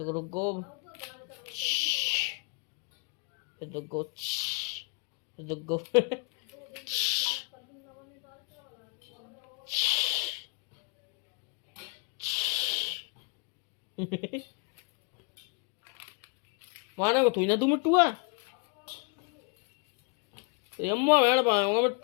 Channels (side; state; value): right; quieter; 32.3 dB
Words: रुको, फिर देखो फिर देखो माने को थोड़ी ना तू मिट्टू है। तो अम्मा भेड़ पाऊंगा